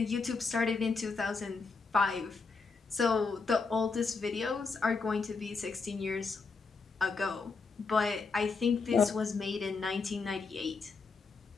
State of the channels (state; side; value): quieter; right; 4.5 dB